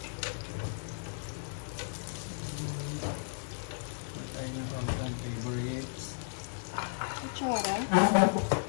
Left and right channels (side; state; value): right; silent; 55 dB below the other